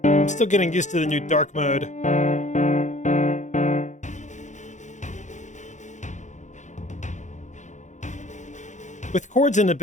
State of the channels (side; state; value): right; late; 0.35 ms